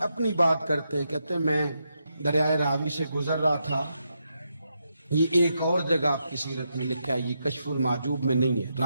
اپنی بات کرتے ہیں، کہتے ہیں میں دریائے راوی سے گزر رہا تھا، یہ ایک اور جگہ آپ کی سیرت میں لکھا ہے، یہ کشف المحجوب میں نہیں ہے،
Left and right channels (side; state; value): both; inverted; correlation -0.83